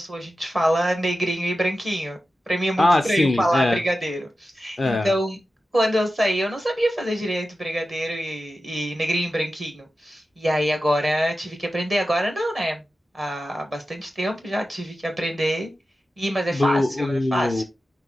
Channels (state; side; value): normal; both; correlation 0.93